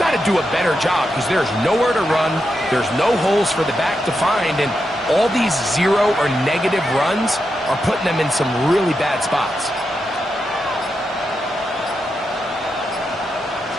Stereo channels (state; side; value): normal; both; correlation 0.86